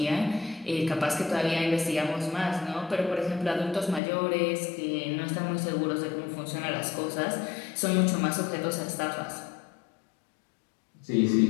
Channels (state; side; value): drops out; right; at 4.0 s